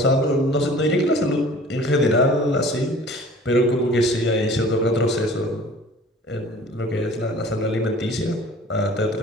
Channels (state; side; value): normal; both; correlation 0.47